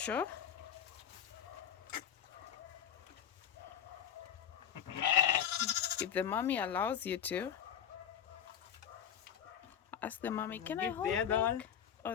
If the mommy allows you to, ask the mommy, can I Give hold the other milk? one. Oh,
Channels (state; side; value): quieter; right; 9.3 dB